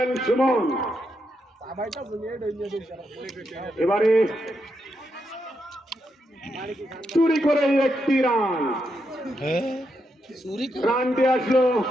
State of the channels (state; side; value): normal; both; correlation 0.82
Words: সুমন এবারে চুরি করে একটি রানটি আসলো